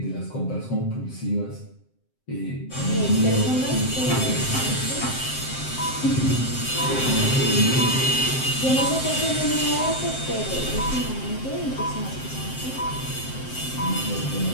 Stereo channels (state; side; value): late; right; 7.7 ms